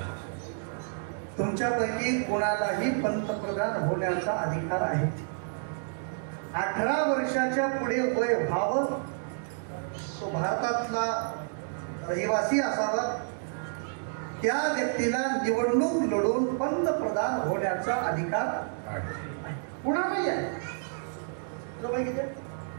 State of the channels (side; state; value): left; silent; digital silence